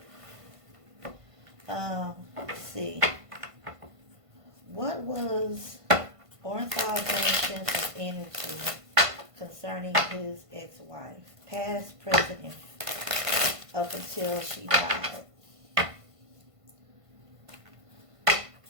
Let's see. What was Ornthal Jameson's energy concerning his ex-wife? Past, present, and up until she died.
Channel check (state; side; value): late; left; 1.5 ms